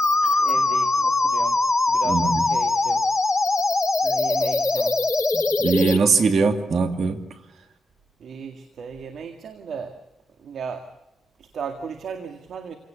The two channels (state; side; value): normal; both; correlation 0.86